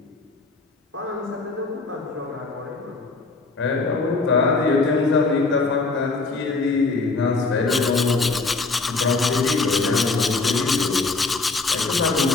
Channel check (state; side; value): quieter; right; 3.8 dB